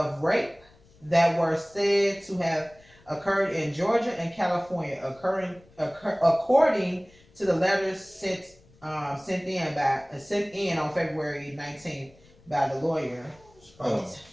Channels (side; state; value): left; noise; rumble, 28 dB below the sound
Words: rape that were said to have occurred in Georgia and California, according to the letters sent in on February 19th by the lawyer. Oh,